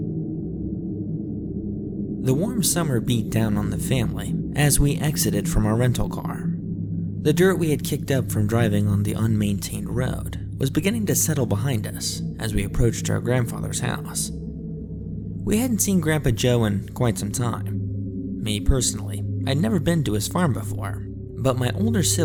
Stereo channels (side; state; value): both; identical; correlation 1.00